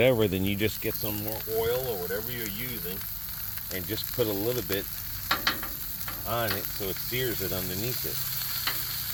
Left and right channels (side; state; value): both; identical; correlation 1.00